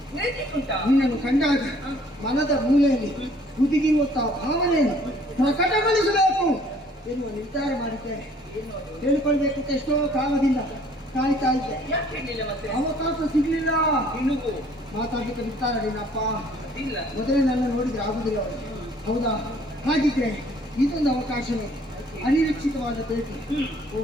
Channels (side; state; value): both; normal; correlation 0.58